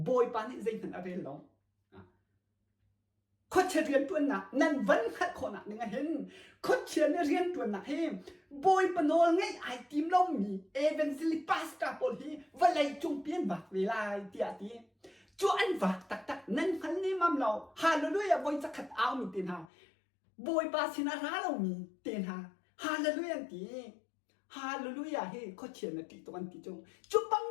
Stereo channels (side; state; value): right; drops out; at 19.7 s